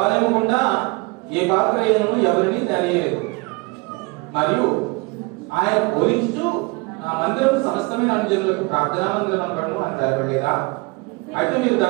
గుండా ఏ పాత్రను ఎవరిని తెలియలేదు. మరియు ఆయన బోధించుచు, నా మందిరం సమస్తమైన అనుజనులకు ప్రార్థనా మందిరం అనబడును అని తెలపలేదా? అయితే మీరు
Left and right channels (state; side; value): quieter; left; 26.5 dB